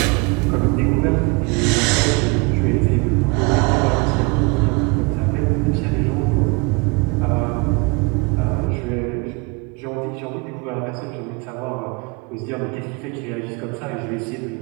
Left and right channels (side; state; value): left; quieter; 28.8 dB